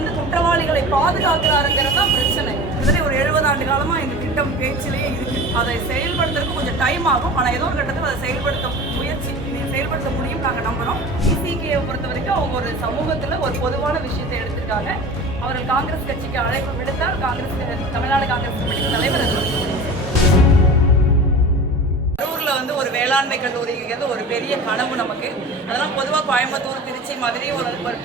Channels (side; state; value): both; normal; correlation 0.36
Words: குற்றவாளிகளை பாதுகாக்கிறாருங்கிறது தான் பிரச்சனை. கிட்டத்தட்ட ஒரு 70 ஆண்டு காலமாக இந்த திட்டம் பேச்சிலேயே இருக்கு. அதை செயல்படுத்துறதுக்கு கொஞ்சம் டைம் ஆகும். ஆனால் ஏதோ ஒரு கட்டத்தில் அதை செயல்படுத்த முடியும் நாங்கள் நம்புகிறோம். விசிகேயை பொறுத்த வரைக்கும் அவங்க ஒரு சமூகத்தில் ஒரு பொதுவான விஷயத்தை எடுத்திருக்காங்க. அவர்கள் காங்கிரஸ் கட்சிக்கு அழைப்பு விடுத்தால் தமிழ்நாடு காங்கிரஸ் கமிட்டி தலைவர் வந்து ஒரு வேளாண்மை கல்லூரிங்கிறது ஒரு பெரிய கனவு நமக்கு. அதெல்லாம் பொதுவாக கோயம்புத்தூர், திருச்சி, மதுரை ஒரு